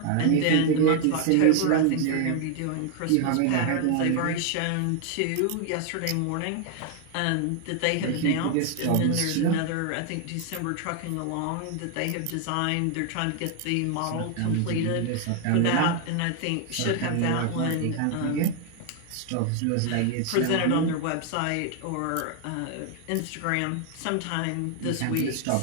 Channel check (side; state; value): both; different; correlation 0.00